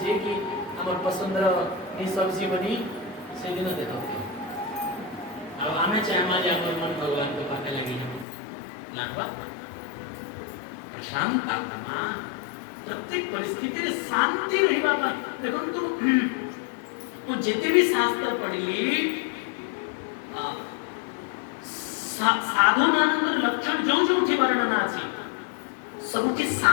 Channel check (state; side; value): drops out; right; at 8.2 s